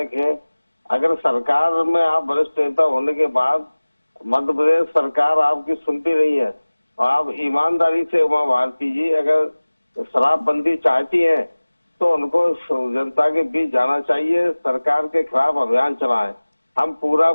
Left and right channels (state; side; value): inverted; both; correlation -1.00